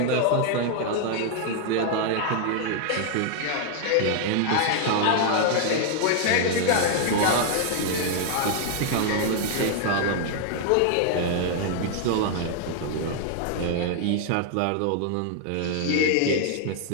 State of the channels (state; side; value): different; both; correlation 0.00